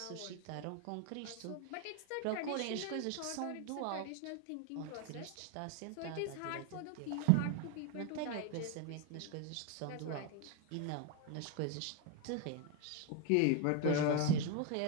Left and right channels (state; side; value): different; both; correlation 0.01